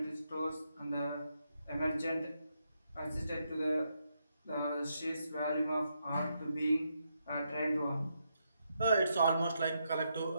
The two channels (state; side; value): inverted; both; correlation -0.80